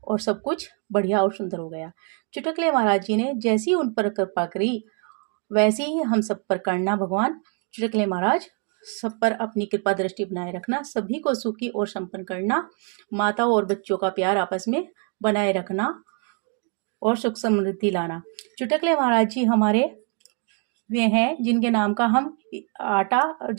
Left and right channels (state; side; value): quieter; left; 37.0 dB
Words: और सब कुछ बढ़िया और सुंदर हो गया। चुटकुले महाराज जी ने जैसी उन पर कृपा करी वैसे ही हम सब पर करना। भगवान चुटकुले महाराज सब पर अपनी कृपा दृष्टि बनाए रखना, सभी को सुखी और संपन्न करना, माता और बच्चों का प्यार आपस में बनाए रखना और सुख समृद्धि लाना। चुटकुले महाराज जी हमारे वे हैं जिनके नाम का हम आटा